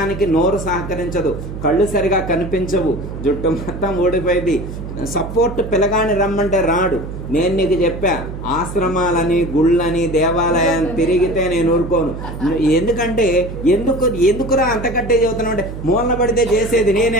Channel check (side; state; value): right; noise; hum, 9 dB below the sound